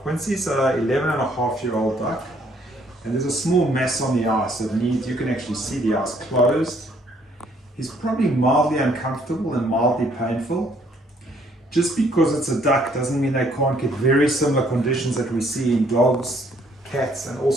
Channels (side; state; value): both; normal; correlation 0.65